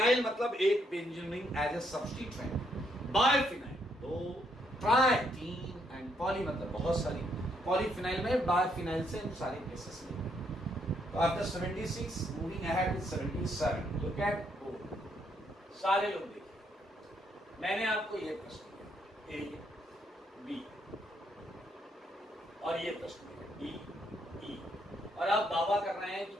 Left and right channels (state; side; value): normal; both; correlation 0.73